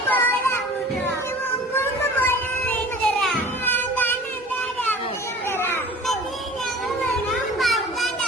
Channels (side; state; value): both; normal; correlation 0.43